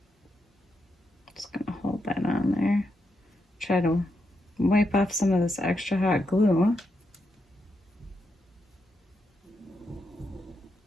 Just gonna hold that on there. try to wipe off some of this extra hot glue.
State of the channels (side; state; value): both; normal; correlation 0.83